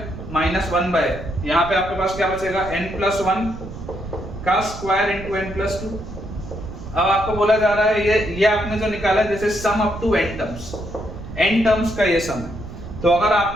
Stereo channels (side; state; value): right; noise; rumble, 11 dB below the sound